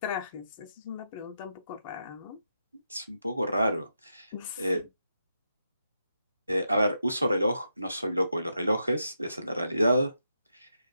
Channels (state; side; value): inverted; both; correlation -0.84